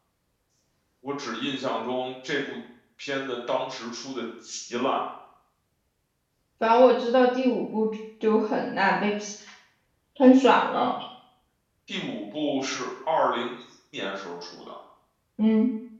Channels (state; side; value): identical; both; correlation 1.00